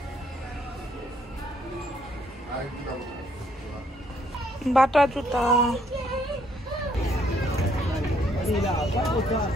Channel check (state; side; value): normal; both; correlation 0.68